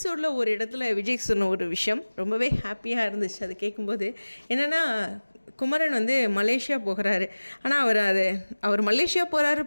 ஒரு இடத்துல விஜய் சொன்ன ஒரு விஷயம் ரொம்பவே ஹாப்பியாக இருந்துச்சு. அது கேட்கும்போது என்னென்னா, குமரன் வந்து மலேசியா போகிறாரு. ஆனால் அவர் மலேசியா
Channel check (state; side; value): inverted; both; correlation -1.00